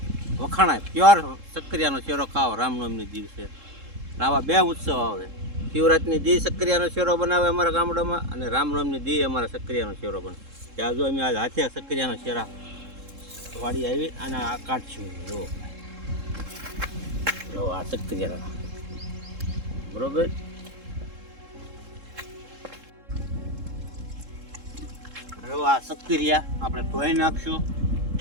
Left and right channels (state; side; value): late; left; 3.7 ms